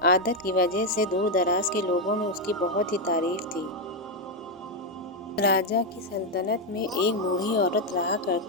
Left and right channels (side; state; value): both; normal; correlation 0.04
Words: عادت کی وجہ سے دور دراز کے لوگوں میں اس کی بہت ہی تعریف تھی۔ راجا کی سلطنت میں ایک بوڑھی عورت رہا